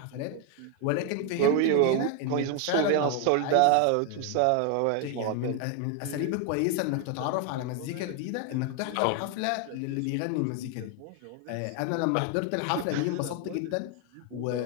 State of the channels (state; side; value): different; both; correlation 0.01